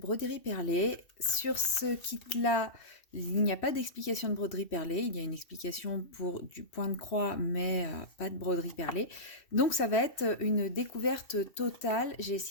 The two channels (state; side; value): late; right; 2.6 ms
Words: perlée. Sur ce kit-là, il n'y a pas d'explication de broderie perlée. Il y a une explication pour du point de croix, mais pas de broderie perlée. Donc ça va être une découverte totale. J'ai